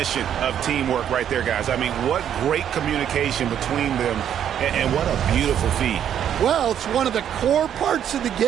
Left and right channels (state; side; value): quieter; left; 9.6 dB